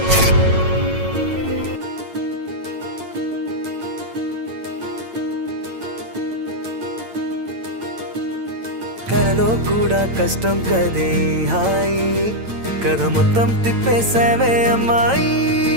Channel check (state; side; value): late; left; 8.9 ms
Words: కలలో కూడా కష్టం కదే హాయి కథ మొత్తం తిప్పేసావే అమ్మాయి